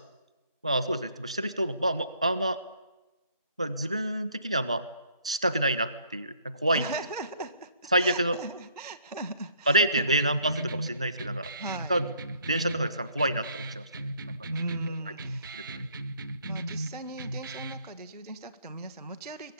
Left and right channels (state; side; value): inverted; both; correlation -0.63